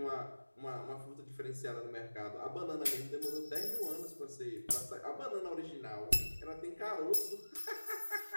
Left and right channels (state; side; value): inverted; both; correlation -1.00